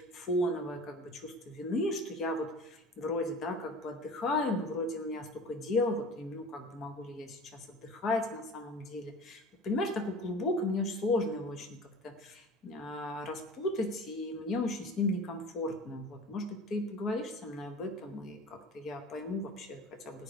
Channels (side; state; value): both; normal; correlation 0.39